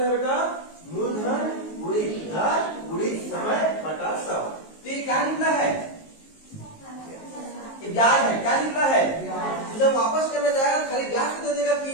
है बेटा? मूलधन गुणित दर गुणित समय बटा 100। तो ये क्या निकला है? ये ब्याज है। क्या निकला है? तो जब वापस करने जाएगा खाली ब्याज को दे देगा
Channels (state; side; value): late; right; 19 ms